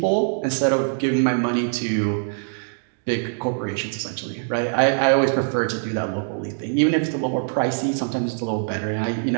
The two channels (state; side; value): silent; left; digital silence